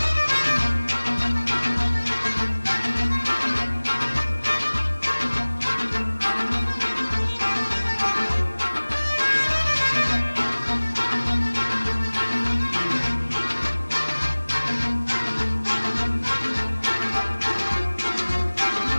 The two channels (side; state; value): both; inverted; correlation -1.00